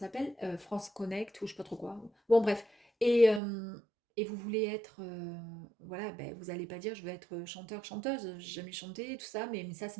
France Connect, ou je ne sais pas trop quoi. Bon, bref. Et vous voulez être, voilà, ben, vous n'allez pas dire je veux être chanteur, chanteuse, j'ai jamais chanté, tout ça, mais ça c'est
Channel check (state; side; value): drops out; left; at 3.4 s